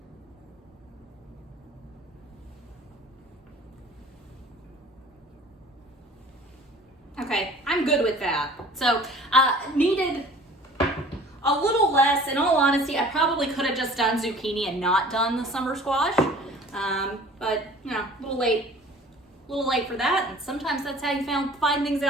Okay, I'm good with that. So needed a little less. In all honesty, I probably could have just done zucchini and not done the summer squash. But a little late for that. And sometimes that's how you find things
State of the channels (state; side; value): normal; both; correlation 0.47